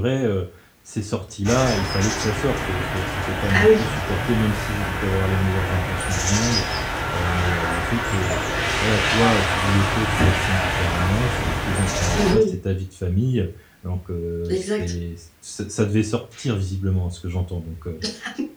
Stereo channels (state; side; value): identical; both; correlation 1.00